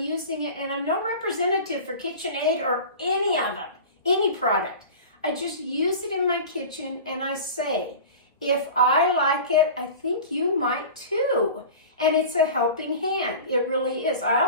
it, and I'm no representative for KitchenAid or any of them, any product. I just use it in my kitchen, and I say, If I like it, I think you might too. And it's a helping hand. It really is. I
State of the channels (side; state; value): both; inverted; correlation -0.35